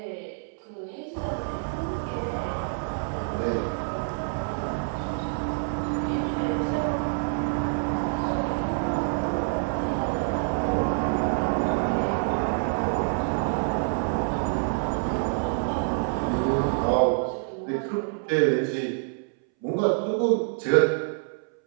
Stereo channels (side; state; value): left; silent; 60 dB below the other